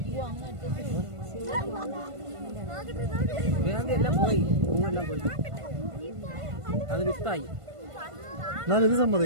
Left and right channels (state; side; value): late; left; 1.5 ms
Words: എല്ലാം പോയി, പൂവെല്ലാം പോയി. അത് വിത്തായി. ഞാൻ ഇത്